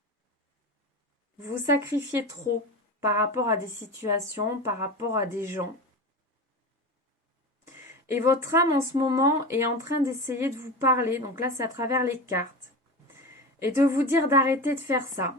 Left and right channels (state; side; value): normal; both; correlation 0.26